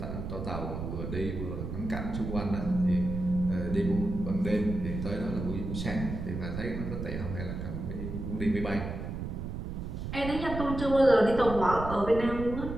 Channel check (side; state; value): right; noise; rumble, 6 dB below the sound